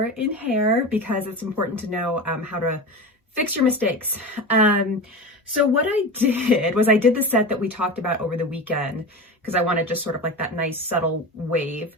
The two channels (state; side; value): normal; both; correlation 0.27